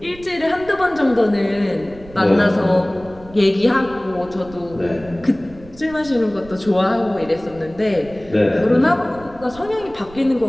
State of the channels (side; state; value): right; noise; rumble, 20 dB below the sound